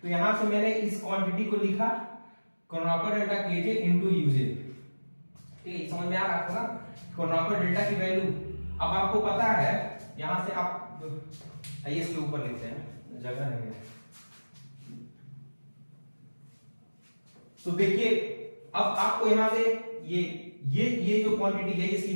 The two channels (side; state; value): both; inverted; correlation -1.00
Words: तो यहां से मैंने इस क्वांटिटी को लिखा कर्नौकर डेल्टा के जे इनटू यू जे, ठीक है। समझ में आ रहा है आपको ना कर्नौकर डेल्टा की वैल्यू। अब आपको पता है यहां से आप आइए इसके ऊपर लिखते हैं, जगह नहीं है। तो देखिए अब आपको यहां से ये जो क्वांटिटी है ये